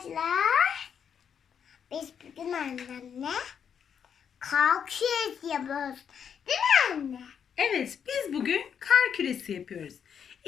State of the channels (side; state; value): right; quieter; 7.7 dB